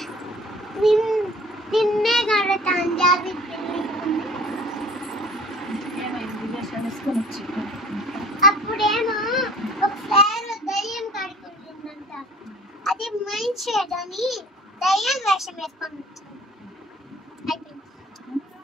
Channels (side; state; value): both; normal; correlation 0.48